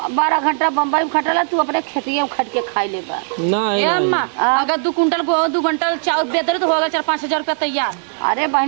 12 घंटा बम्बई में खटला तू अपने खेतिए में खट के खाई ले बा। ना ए है अम्मा अगर 2 कुंटल को 2 कुंटल चावल बेदर तो होगा 4-5 हजार रुपया तैयार। अरे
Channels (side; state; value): left; silent; 58 dB below the other